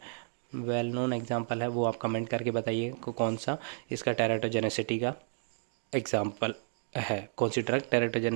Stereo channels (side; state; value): left; silent; digital silence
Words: वो आप कमेंट करके बताइए कौन सा इसका टेरेटोजेनेसिटी का एग्जाम्पल है, कौन सी ड्रग